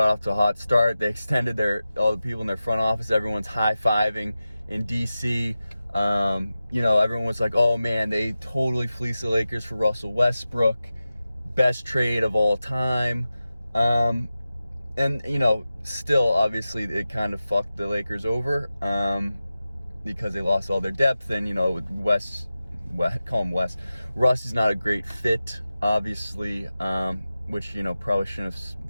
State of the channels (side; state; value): both; inverted; correlation -0.94